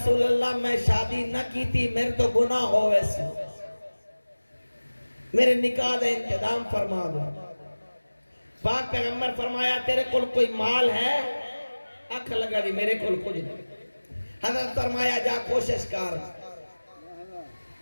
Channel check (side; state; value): both; inverted; correlation -1.00